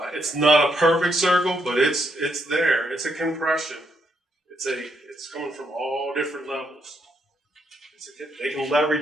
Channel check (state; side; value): normal; both; correlation 0.76